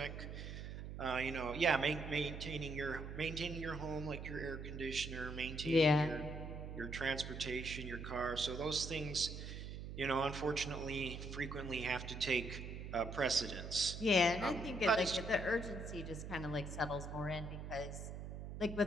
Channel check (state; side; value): noise; right; hum, 8 dB below the sound